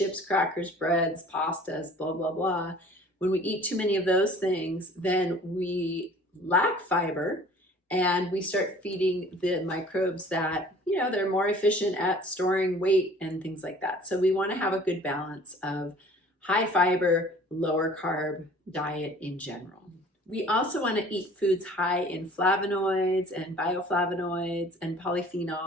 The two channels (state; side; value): normal; both; correlation 0.49